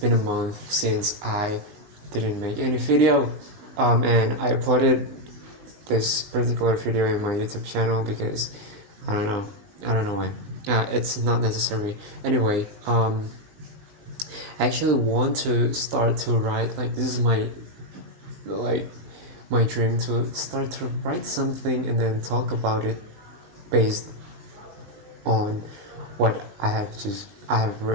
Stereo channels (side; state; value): left; late; 20 ms